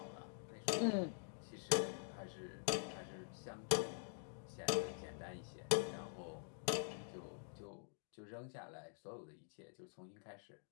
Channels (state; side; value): silent; right; digital silence